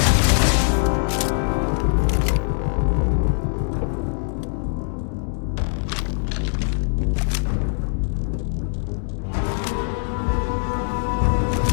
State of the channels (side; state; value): right; silent; digital silence